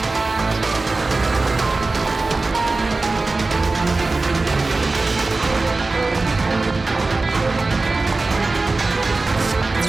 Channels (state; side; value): quieter; left; 3.5 dB